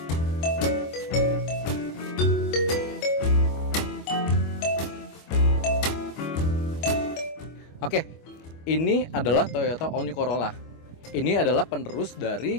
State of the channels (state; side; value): late; right; 25 ms